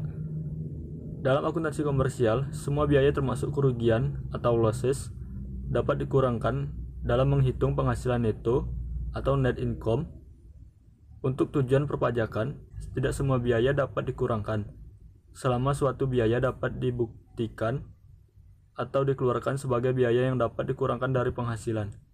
Dalam akuntansi komersial, semua biaya termasuk kerugian atau losses dapat dikurangkan dalam menghitung penghasilan neto atau net income. Untuk tujuan perpajakan, tidak semua biaya dapat dikurangkan selama suatu biaya dapat dibuktikan atau dikeluarkan sebagai biaya yang dapat dikurangkan dari penghasilan.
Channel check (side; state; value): both; identical; correlation 1.00